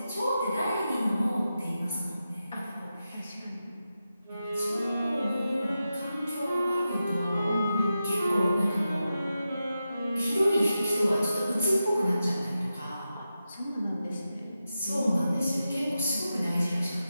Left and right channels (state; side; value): inverted; both; correlation -0.90